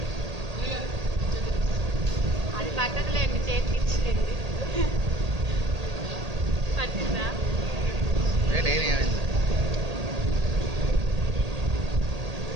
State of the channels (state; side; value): late; left; 1.8 ms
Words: అది పట్టదులేండి, చేతికి ఇచ్చింది పట్టిందా? ఏమైంది